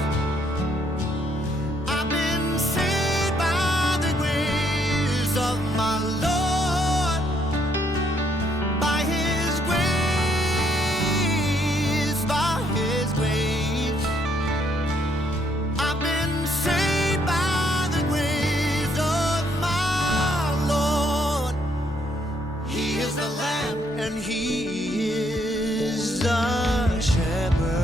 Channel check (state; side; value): normal; both; correlation 0.71